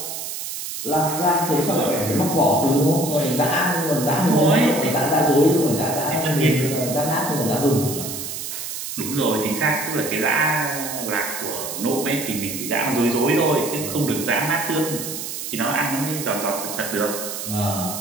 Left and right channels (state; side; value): noise; right; hiss, 6 dB below the sound